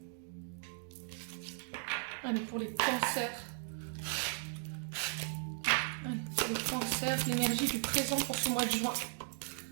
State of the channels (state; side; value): silent; left; 53 dB below the other